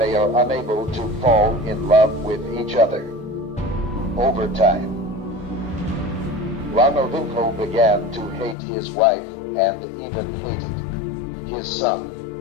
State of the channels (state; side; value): drops out; right; at 8.6 s